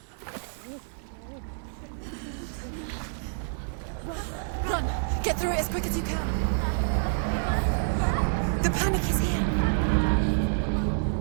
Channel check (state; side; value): silent; left; 59 dB below the other